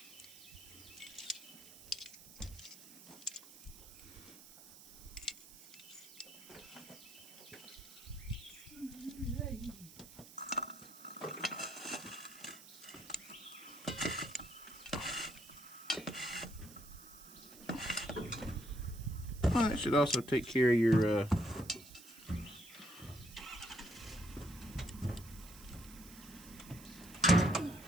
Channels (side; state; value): right; noise; hiss, 18 dB below the sound